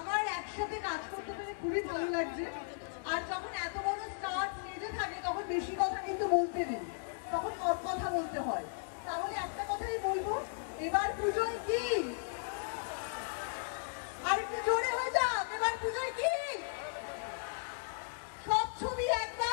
একসাথে কাজ করতে পেরে খুবই ভালো লাগছে। আর যখন এত বড় স্টার স্টেজে থাকে তখন বেশি কথা কিন্তু বলতে নেই, তখন কম কথা বলতে হয়। তাহলে একটা কথাই বলবো, এবার পুজোয় কি? আর একটু জোরে হয়ে যাক, এবার পুজোয় কি? সব ছবি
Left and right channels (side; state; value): right; silent; digital silence